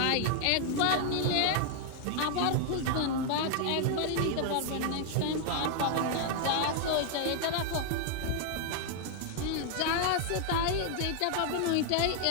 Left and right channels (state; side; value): different; both; correlation 0.00